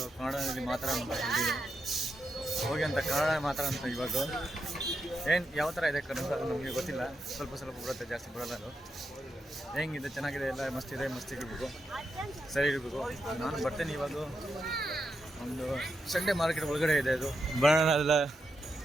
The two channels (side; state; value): both; normal; correlation 0.85